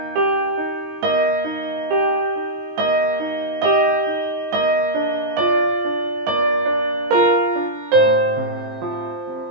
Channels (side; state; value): left; late; 20 ms